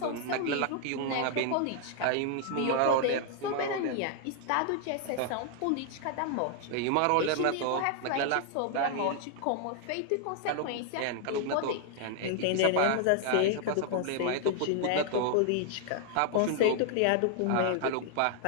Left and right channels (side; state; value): both; different; correlation 0.00